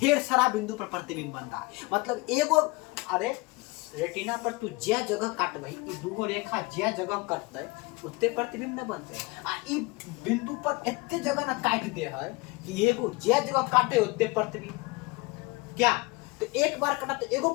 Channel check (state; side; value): quieter; right; 24.9 dB